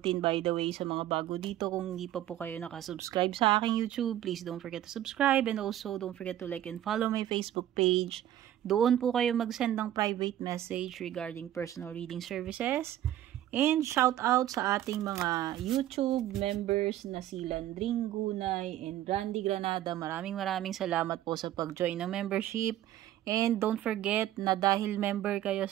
by the way, sa mga bago dito. Kung hindi pa po kayo nakasubscribe sa aking YouTube, please don't forget to subscribe and also don't forget to like and follow my Facebook page. Doon po kayo mag-send ng private message regarding personal reading services. And shout out sa ating mga YouTube members na si Landring Gunay and Randy Granada. Maraming salamat po sa pag-join ng membership. And don't forget na dahil member kayo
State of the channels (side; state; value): left; quieter; 12.6 dB